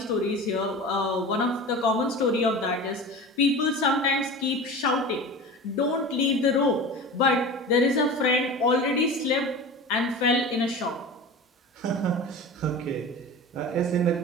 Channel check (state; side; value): normal; both; correlation 0.33